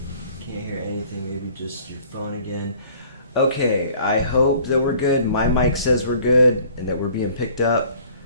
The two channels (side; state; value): both; inverted; correlation -0.53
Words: hear anything. Maybe just your phone again. Okay, I hope that we're good. My mic says we're good and that we're being picked up.